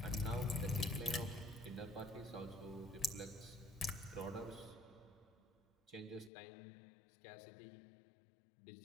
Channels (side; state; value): right; drops out; at 6.3 s